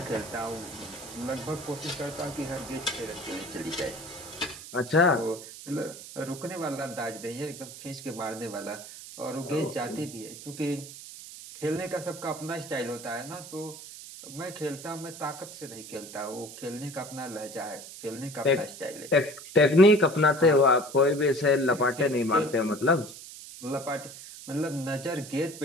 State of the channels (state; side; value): noise; right; hiss, 14 dB below the sound